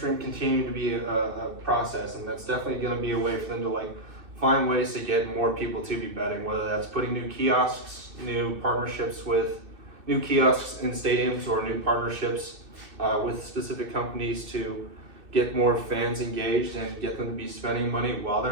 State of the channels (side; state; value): left; late; 2.6 ms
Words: continuing to be a process, and that's definitely going to be a way for them to like find ways to get more people to be betting. Whether that's putting new kiosks, new partnerships with new kiosks in stadiums, or new partnerships with specific companies to get more fans engaged and get them to be spending money while